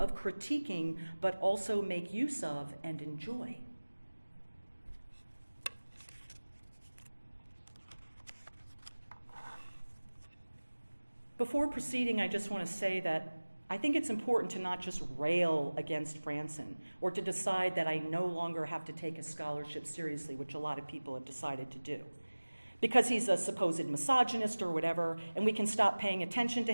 critiquing, but also make use of and enjoy. Before proceeding, I just want to say that I think it's important to not just rail against Fransen or to decide that I no longer have to take his scholarship seriously, which a lot of people have decided to do. Because he's a supposed misogynist or whatever, and we can stop paying attention to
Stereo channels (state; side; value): inverted; both; correlation -1.00